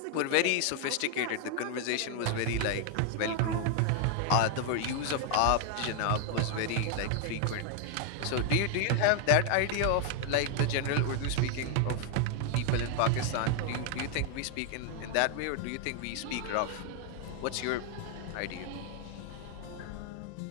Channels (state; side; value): different; both; correlation 0.00